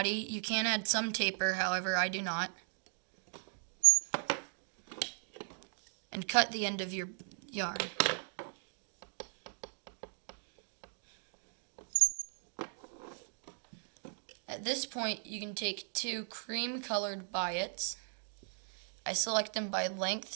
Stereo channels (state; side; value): silent; left; 53 dB below the other